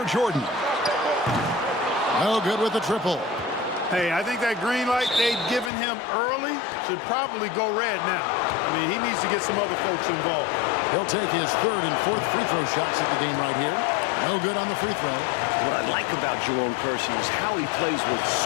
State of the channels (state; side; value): drops out; right; at 5.7 s